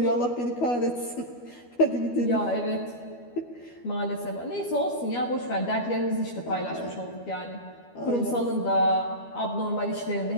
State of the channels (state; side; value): late; right; 12 ms